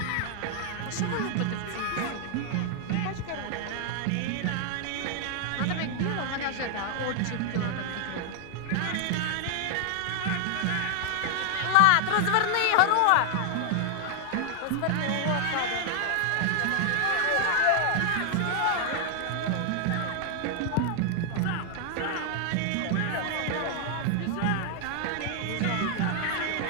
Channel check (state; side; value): different; both; correlation 0.00